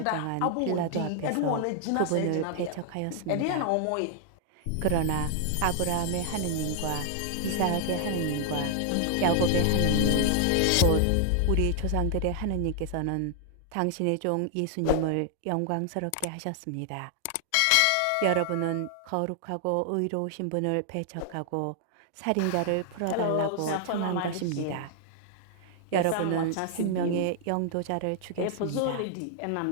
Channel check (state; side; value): different; both; correlation 0.00